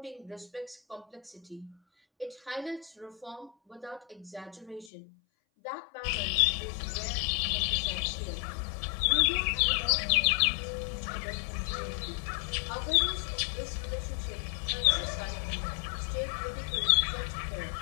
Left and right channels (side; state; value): right; drops out; at 4.9 s